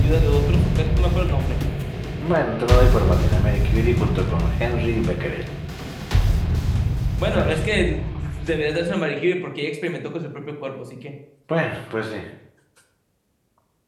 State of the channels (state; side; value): identical; both; correlation 1.00